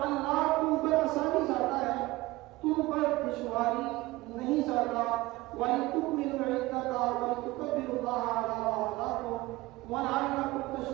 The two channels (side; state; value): left; quieter; 19.7 dB